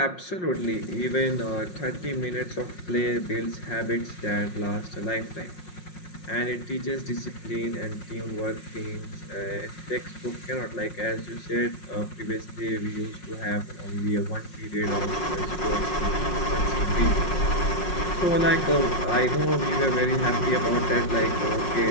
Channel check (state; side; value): late; right; 5.5 ms